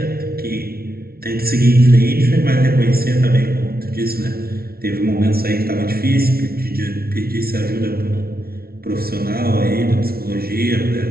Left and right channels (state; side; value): late; left; 0.44 ms